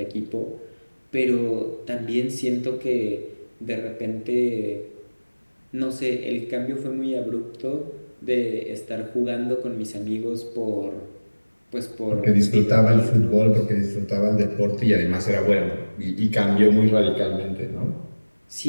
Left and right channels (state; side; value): inverted; both; correlation -1.00